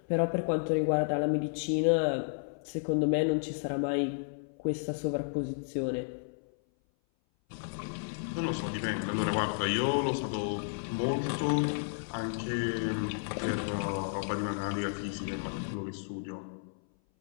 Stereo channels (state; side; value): silent; right; 56 dB below the other